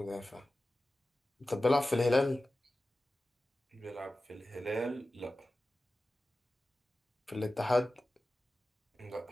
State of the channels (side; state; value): both; normal; correlation 0.95